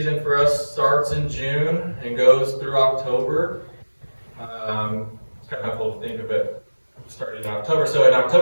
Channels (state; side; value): inverted; both; correlation -1.00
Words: for us starts in June and goes through October. It's kind of cool to think of it starting in October. So in